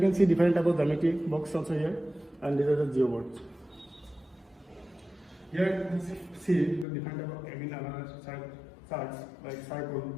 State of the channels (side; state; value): right; drops out; at 6.9 s